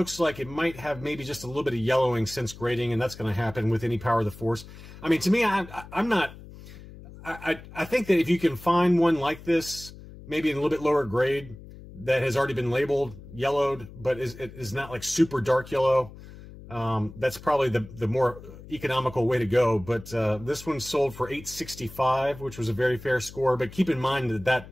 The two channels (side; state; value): left; noise; hum, 17 dB below the sound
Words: like it might have maybe just a little bit of yellowing since grading, and that's going to happen with any Power of the Force. I mean, to me, I think that if you can find one like this, maybe in a little bit lower grade, that has already been labeled yellowed, but is not like super dark yellow, that's probably the more economical way to go. But this one sold for $865, which was a very fair score. But keep in mind that